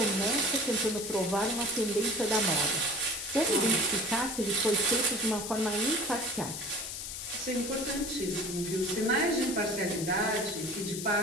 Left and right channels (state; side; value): noise; left; hiss, 7 dB below the sound